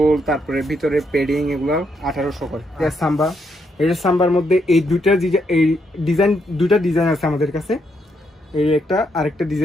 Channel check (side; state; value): both; normal; correlation 0.77